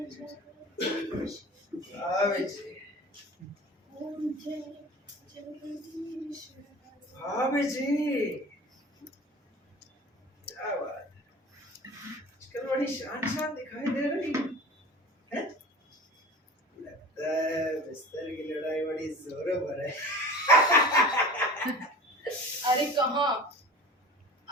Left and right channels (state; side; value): normal; both; correlation 0.38